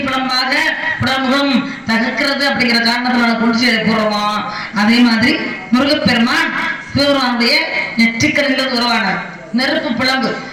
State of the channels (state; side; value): identical; both; correlation 1.00